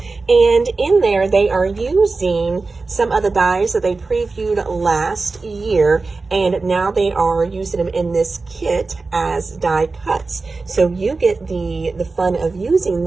And in there, they are using some of the dies that they previewed last year, and now they are using them in this kit as die cuts. So you get the fun of using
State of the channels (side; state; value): left; quieter; 3.9 dB